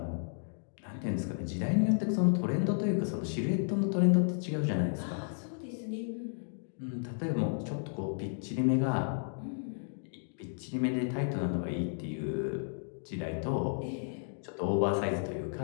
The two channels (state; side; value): silent; right; digital silence